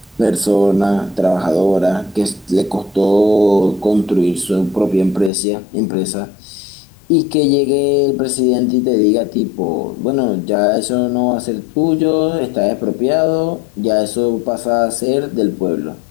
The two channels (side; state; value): right; drops out; at 5.3 s